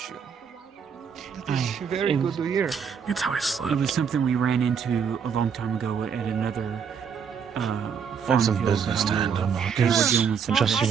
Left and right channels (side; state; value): left; quieter; 6.8 dB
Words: That is very good to hear. It's how I slept. It was something we ran into a long time ago at another Have some business to handle, Marcus. Just